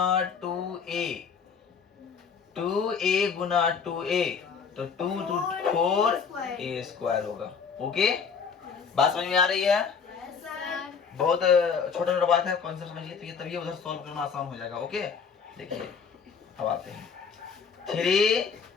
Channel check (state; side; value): quieter; right; 6.1 dB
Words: 2a, 2a गुना 2a, तो 2 to 4a स्क्वायर होगा। ओके, बात समझ में आ रही है? बहुत छोटा छोटा बात है, कॉन्सेप्ट समझिए, तो ये तभी उधर सॉल्व करना आसान हो जाएगा। ओके, देखिए अब आते हैं,